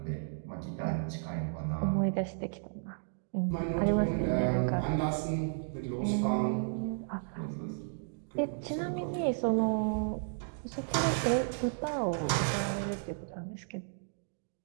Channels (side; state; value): left; silent; digital silence